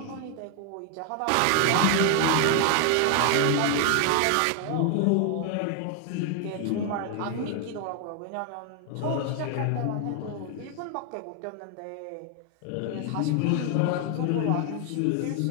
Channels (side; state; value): both; different; correlation 0.00